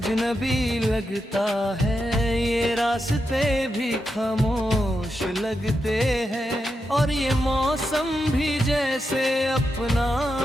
लगता है, ये रास्ते भी खामोश लगते हैं, और ये मौसम भी जैसे अपना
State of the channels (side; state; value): both; normal; correlation 0.86